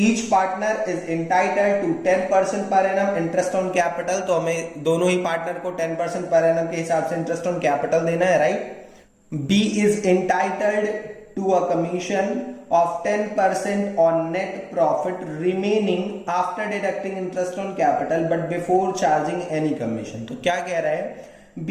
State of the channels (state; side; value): identical; both; correlation 1.00